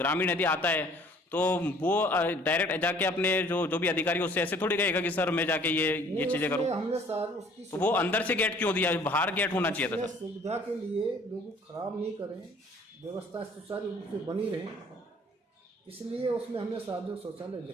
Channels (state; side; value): normal; both; correlation 0.55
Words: यदि आता है तो वो डायरेक्ट जाके अपने जो भी अधिकारी उससे ऐसे थोड़ी कहेगा कि सर मैं जाके ये चीजें करूँ। तो वो अंदर से गेट क्यों दिया? बाहर गेट होना चाहिए था सर। सुविधा के लिए लोग खराब नहीं करें, व्यवस्था सुचारू रूप से बनी रहे, इसलिए उसमें हमने सार्वजनिक शौचालय